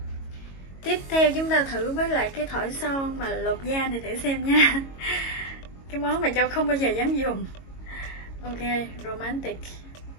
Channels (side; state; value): right; late; 22 ms